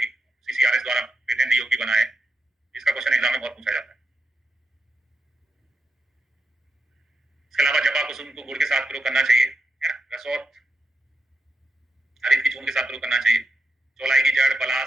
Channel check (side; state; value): both; normal; correlation 0.86